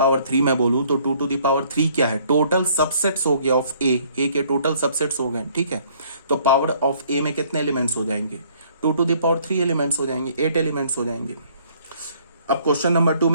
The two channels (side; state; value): both; inverted; correlation -0.61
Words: 3 मैं बोलूं तो 2 टू द पावर 3 क्या है, टोटल सबसेट्स हो गया ऑफ ए के टोटल सबसेट्स हो गए। ठीक है, तो पावर ऑफ ए में कितने एलिमेंट्स हो जाएंगे, 2 टू द पावर 3 एलिमेंट्स हो जाएंगे, 8 एलिमेंट्स हो जाएंगे। अब क्वेश्चन नंबर 2